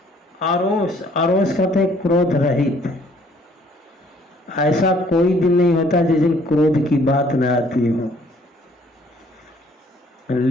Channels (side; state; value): both; normal; correlation 0.60